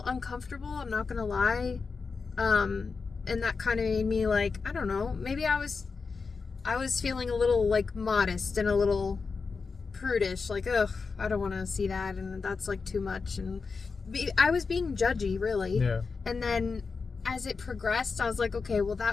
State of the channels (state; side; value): quieter; right; 4.8 dB